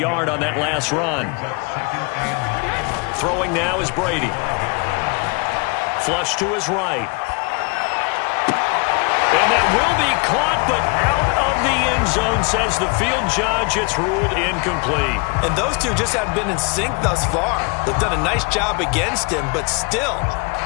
on that last run. Throwing now is Brady. Flush to his right. And that will be caught, but out of the end zone, says the field judge. It's ruled incomplete. And those two just haven't been in sync thus far. They've done a nice job against him, but still,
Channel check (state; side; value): quieter; right; 32.0 dB